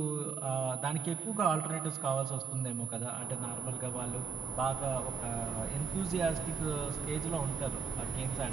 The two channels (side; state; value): left; quieter; 5.7 dB